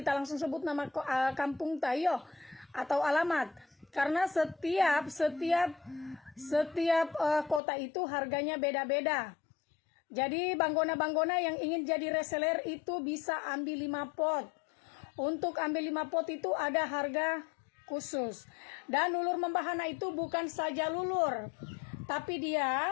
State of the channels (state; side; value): drops out; right; at 7.6 s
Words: nama kampung tayo atau alamat. Karena setiap kota itu harganya beda-beda. Jadi banggona-banggona yang ingin jadi reseller itu bisa ambil 5 pot. Untuk ambil 5 pot itu ada harga khusus. Dan lulur membahana itu bukan saja lulur, tapi dia